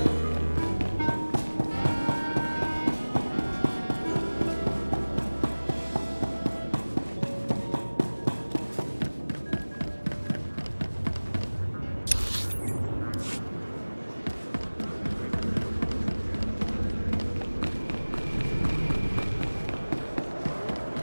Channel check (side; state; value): both; inverted; correlation -1.00